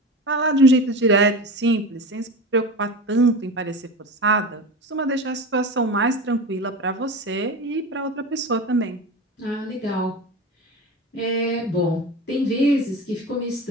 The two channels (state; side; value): normal; both; correlation 0.29